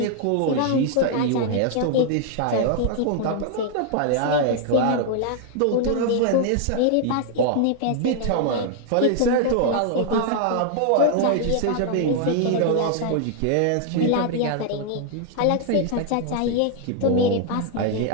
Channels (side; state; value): both; different; correlation 0.00